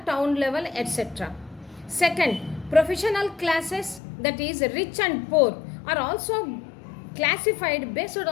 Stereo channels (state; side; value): drops out; right; at 4.0 s